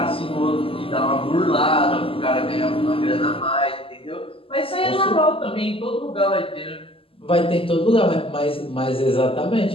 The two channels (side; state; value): right; late; 0.26 ms